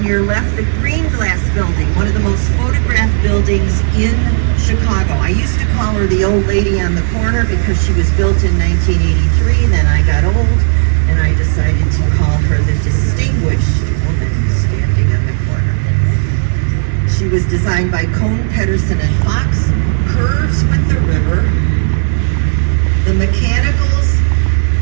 your left, the green glass building, one of the most photographed buildings in Chicago. I used to call her the old lady on the corner because she was built in 1983. Then I got old and I decided to call her the distinguished woman standing on the corner. She was designed by Cohn, Pedersen, and Fox. Curves with the river. The mechanicals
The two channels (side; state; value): left; silent; digital silence